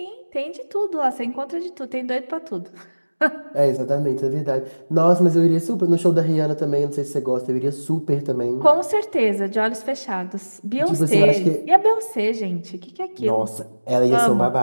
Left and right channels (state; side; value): inverted; both; correlation -1.00